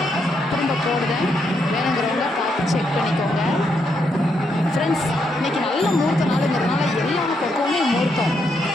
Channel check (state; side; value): normal; both; correlation 0.78